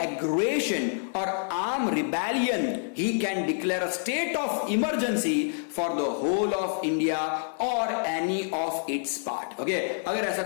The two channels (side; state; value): right; silent; 60 dB below the other